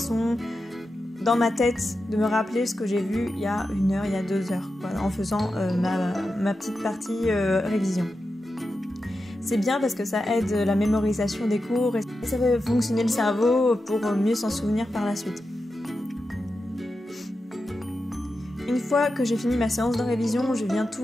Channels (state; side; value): normal; both; correlation 0.90